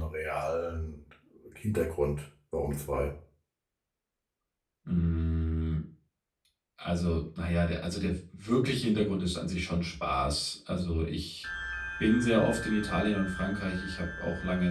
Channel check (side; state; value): both; identical; correlation 1.00